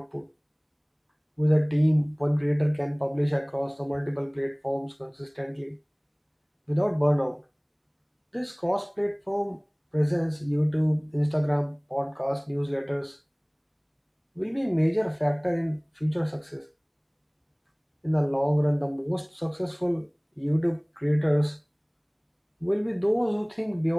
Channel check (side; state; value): both; identical; correlation 1.00